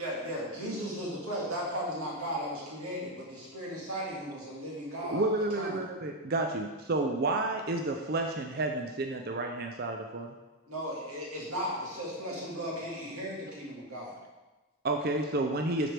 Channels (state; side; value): normal; both; correlation 0.07